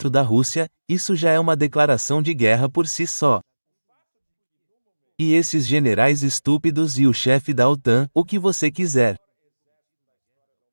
da Rússia, isso já é uma declaração de guerra por si só. E esses generais estúpidos e o chefe da OTAN, o que você quiser.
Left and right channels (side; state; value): both; inverted; correlation -1.00